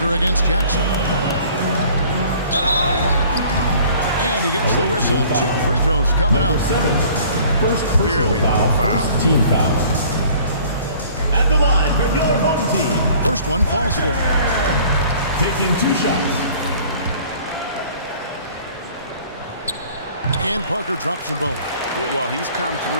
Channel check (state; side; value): inverted; both; correlation -0.52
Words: against Jackson. And he gets the whistle. 2 free throws coming up. First clearly foul. First team foul. At the line for your home team. First one falls for. Taking 2 shots. And Parker drops them both. Well, he's come